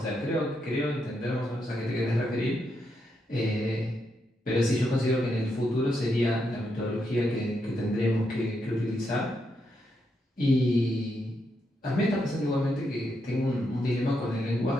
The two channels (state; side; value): normal; both; correlation 0.81